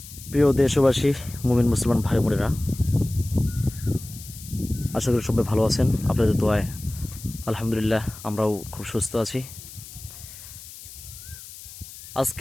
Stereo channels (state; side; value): noise; left; hiss, 15 dB below the sound